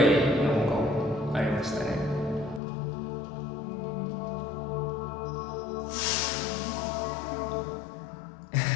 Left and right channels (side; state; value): right; drops out; at 2.6 s